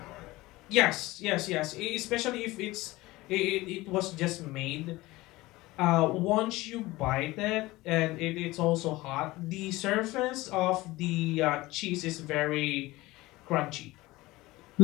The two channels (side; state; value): right; quieter; 19.6 dB